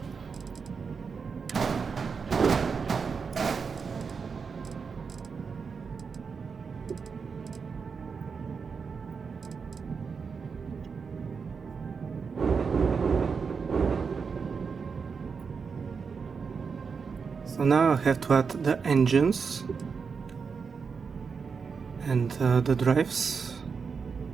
So now I have to add the engines and the drives.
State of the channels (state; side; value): quieter; left; 5.6 dB